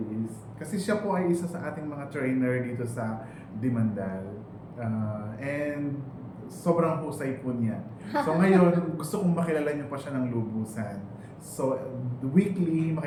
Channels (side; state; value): both; identical; correlation 1.00